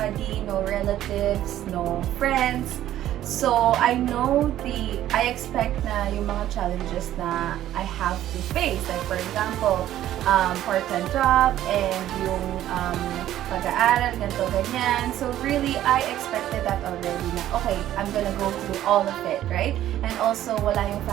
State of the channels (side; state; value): left; quieter; 12.7 dB